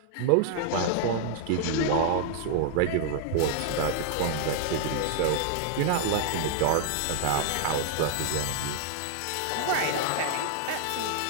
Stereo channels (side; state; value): both; different; correlation -0.01